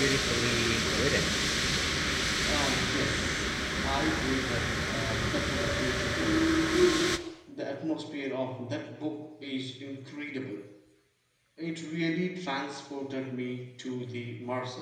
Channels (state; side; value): identical; both; correlation 1.00